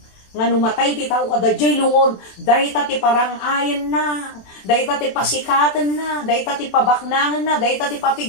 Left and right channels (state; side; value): late; right; 27 ms